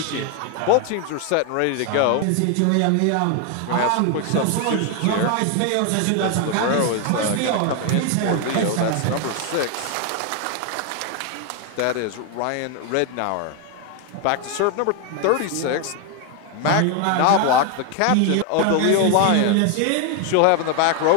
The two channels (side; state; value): both; different; correlation 0.01